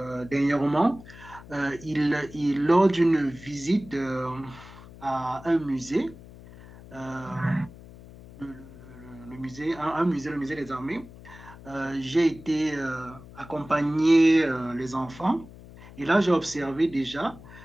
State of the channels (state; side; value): noise; left; hum, 18 dB below the sound